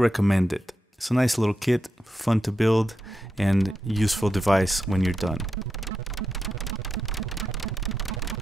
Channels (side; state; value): both; normal; correlation 0.87